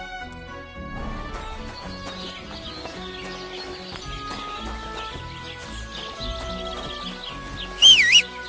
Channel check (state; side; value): identical; both; correlation 1.00